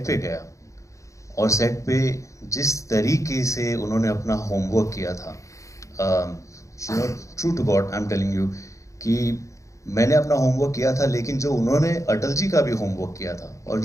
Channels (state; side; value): late; right; 0.15 ms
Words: पे गया और सेट पे जिस तरीके से उन्होंने अपना होमवर्क किया था, you know, true to God I am telling you कि मैंने अपना होमवर्क किया था, लेकिन जो उन्होंने अटल जी का भी होमवर्क किया था और